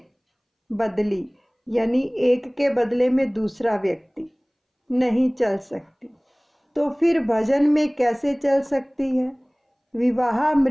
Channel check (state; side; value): identical; both; correlation 1.00